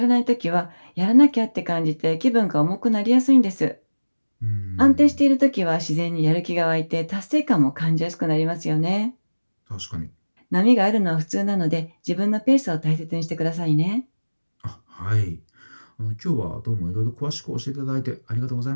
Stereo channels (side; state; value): both; inverted; correlation -1.00